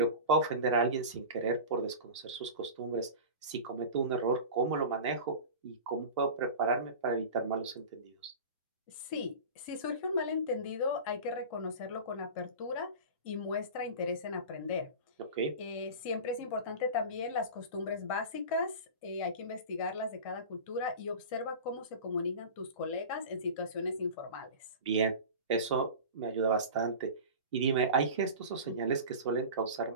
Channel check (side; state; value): both; inverted; correlation -0.32